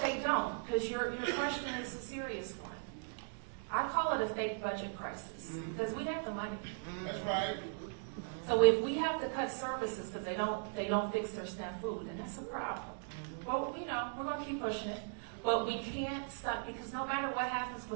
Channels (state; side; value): silent; left; digital silence